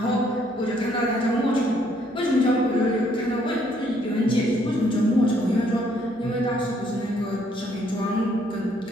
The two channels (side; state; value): both; normal; correlation 0.67